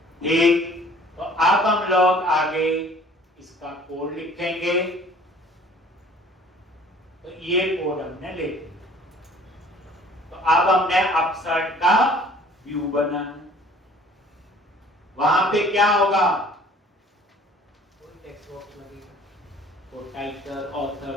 ठीक। तो अब हम लोग आगे इसका कोड लिखेंगे। तो ये कोड हमने ले लिया। तो अब हमने अपसर्ट का व्यू बनाना, वहां पे क्या होगा, कोई टेक्स्ट बॉक्स लगेगा, तो title, author,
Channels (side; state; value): both; normal; correlation 0.52